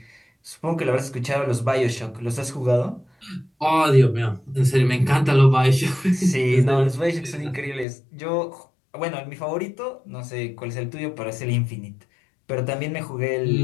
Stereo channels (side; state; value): right; drops out; at 7.9 s